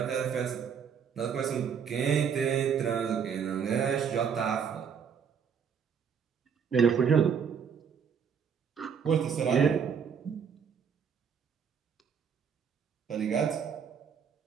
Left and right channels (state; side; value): quieter; left; 7.1 dB